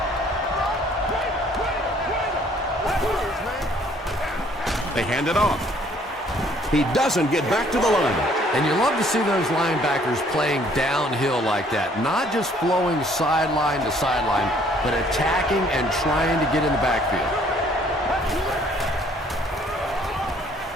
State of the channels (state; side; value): normal; both; correlation 0.60